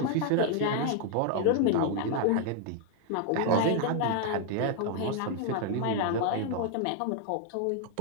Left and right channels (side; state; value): both; different; correlation 0.00